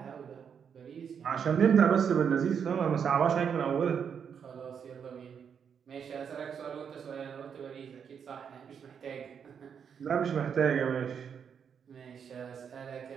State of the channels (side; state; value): left; quieter; 7.3 dB